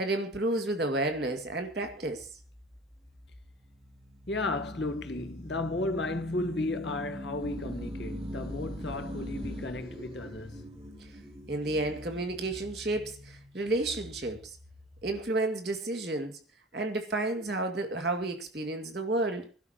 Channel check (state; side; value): normal; both; correlation 0.41